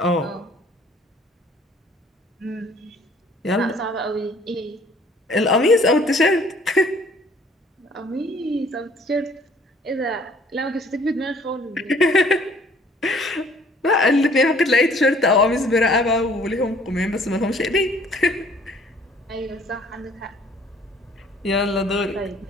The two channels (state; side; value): normal; both; correlation 0.57